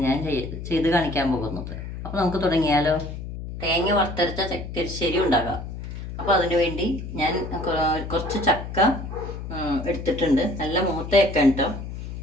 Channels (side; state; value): left; noise; hum, 8 dB below the sound